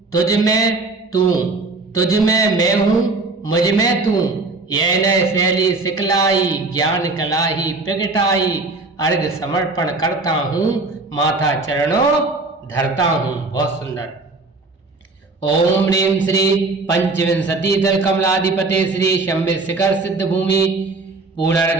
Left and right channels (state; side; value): quieter; left; 3.5 dB